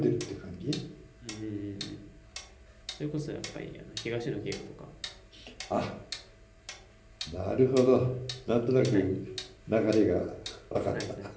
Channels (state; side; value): identical; both; correlation 1.00